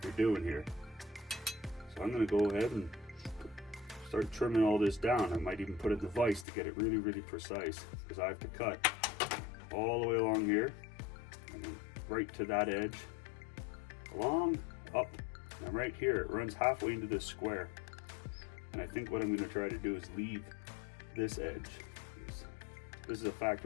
you're doing here. So I'm gonna go ahead and start trimming all this down. I might even put a device to get it really, really precise, because I have to cut all the way along here, and then right to that edge, along, up, and right here, it runs halfway into this square. And I think what I'm gonna try to do is leave this edge. This is a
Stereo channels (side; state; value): right; drops out; at 6.5 s